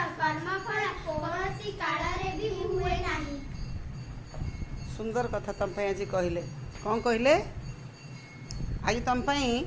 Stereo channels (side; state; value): both; identical; correlation 1.00